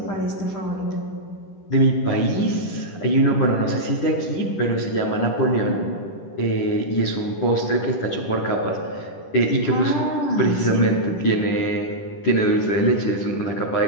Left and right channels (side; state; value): right; late; 10 ms